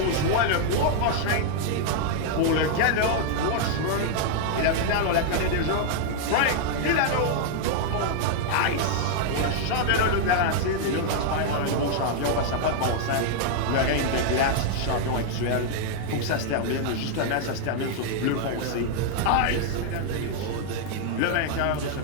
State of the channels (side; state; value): both; different; correlation 0.00